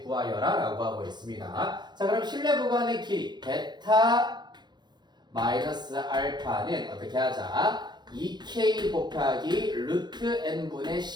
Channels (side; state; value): left; late; 0.21 ms